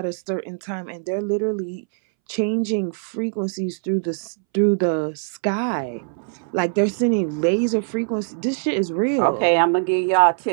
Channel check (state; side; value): silent; left; 64 dB below the other